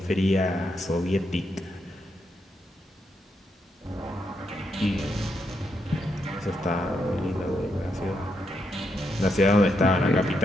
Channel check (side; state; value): both; normal; correlation 0.80